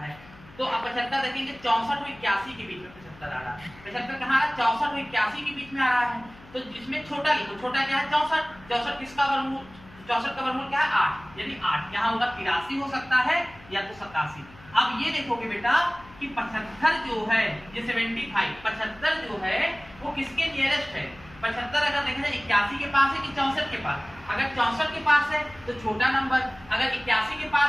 है, तो अब 75 देखेंगे 64 और 81 के बीच में 75 आ रहा है। 75 कहाँ आ रहा है, 64 और 81 के बीच में आ रहा है, तो जिसमें छोटा लिखो, छोटा क्या है 64, 64 किसका वर्गमूल, 64 का वर्गमूल क्या है 8, यानी 8 यहाँ होगा 83 हो सकता है या तो 87। अब ये देखोगे बेटा कि 75 जो है, ये 75 75 जो है वो किसके नियरेस्ट है। 75 अगर देखा जाए 81 के पास है कि 64 के पास। अगर 64 के पास है तो छोटा नंबर, अगर 81 के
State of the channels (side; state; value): left; noise; hum, 22 dB below the sound